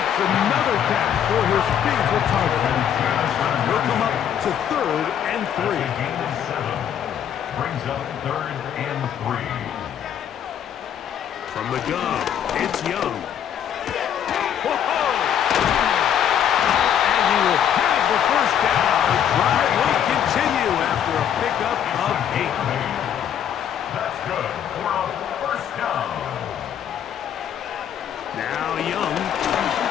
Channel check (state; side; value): quieter; right; 9.3 dB